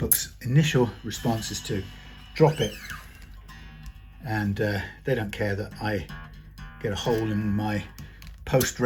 initial response is to drop it, and they don't care that I get a hole in my post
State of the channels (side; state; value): both; identical; correlation 1.00